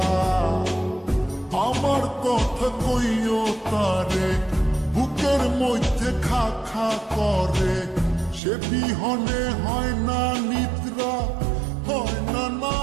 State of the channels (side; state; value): left; drops out; at 8.4 s